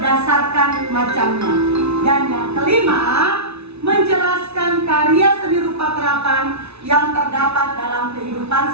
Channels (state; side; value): late; left; 0.80 ms